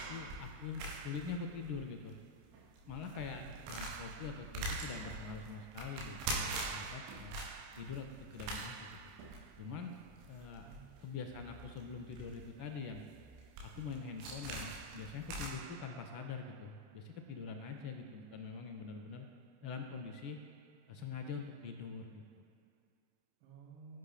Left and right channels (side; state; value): left; late; 29 ms